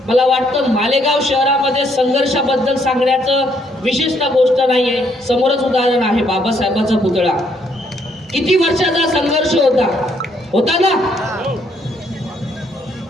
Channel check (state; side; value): normal; both; correlation 0.70